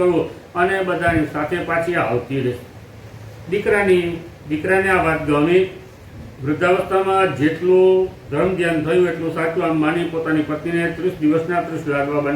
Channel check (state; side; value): identical; both; correlation 1.00